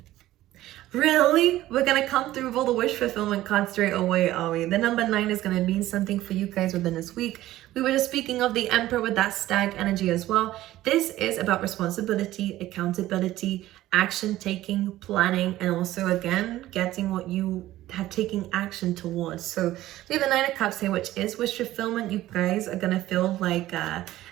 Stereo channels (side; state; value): left; quieter; 15.1 dB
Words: Really? We're going to come through with all the wish fulfillment cards straight away, are we? The number 9 is going to mean something for you guys within this week. We were just speaking of the Emperor with that stag energy as well. This is about responsibility, accountability, action taking, planning, and also, again, getting what you have taken action towards. So we have the 9 of Cups here, which is wish fulfillment. You guys are gonna feel like